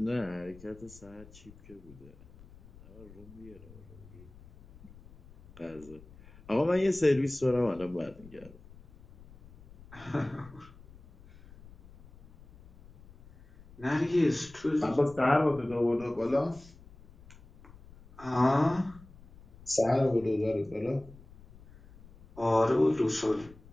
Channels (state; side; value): noise; left; rumble, 22 dB below the sound